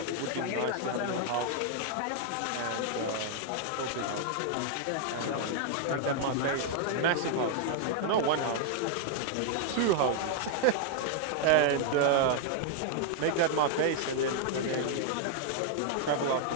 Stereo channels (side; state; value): both; different; correlation 0.00